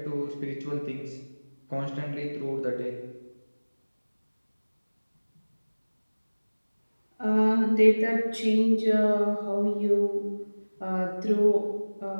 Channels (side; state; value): both; inverted; correlation -1.00